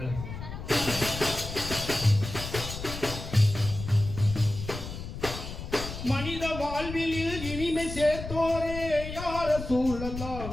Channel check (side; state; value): left; noise; rumble, 8 dB below the sound